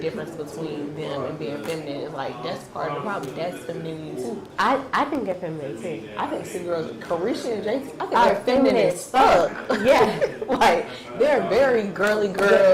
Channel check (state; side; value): identical; both; correlation 1.00